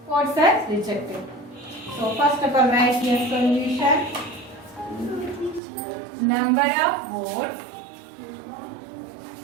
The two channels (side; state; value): left; drops out; at 5.6 s